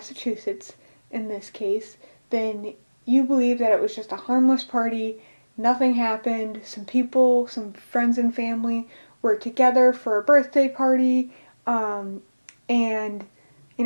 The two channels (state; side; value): inverted; both; correlation -1.00